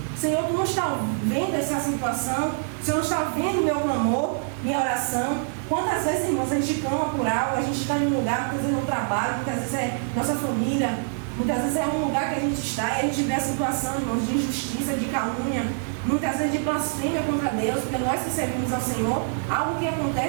Senhor, Tu não está vendo essa situação? O Senhor não está vendo meu clamor, minha oração? Quantas vezes, irmãos, a gente clama por algo, a gente está em um lugar, muitas vezes no trabalho, muitas vezes é nossa família, muitas vezes é um lugar que a gente está e a gente vê a situação, irmãos, de injustiça, de calúnia, muitas vezes de blasfêmia contra Deus, porque nós que servimos ao Senhor, algo que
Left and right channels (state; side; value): silent; left; digital silence